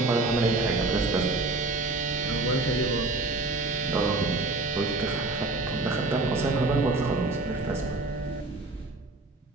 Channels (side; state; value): left; quieter; 3.3 dB